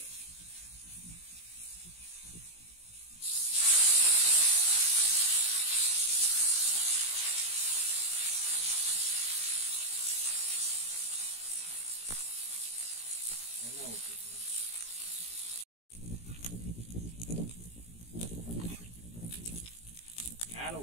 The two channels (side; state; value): right; late; 17 ms